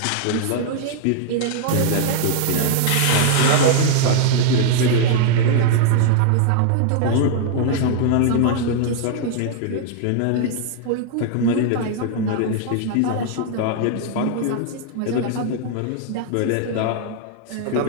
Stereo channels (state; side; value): different; both; correlation -0.01